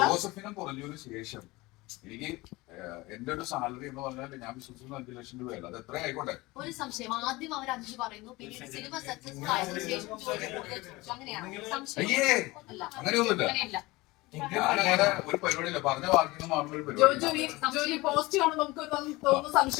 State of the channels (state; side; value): quieter; right; 21.4 dB